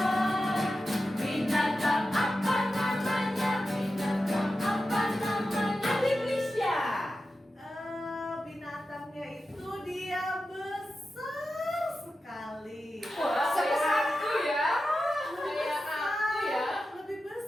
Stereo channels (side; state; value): both; normal; correlation 0.92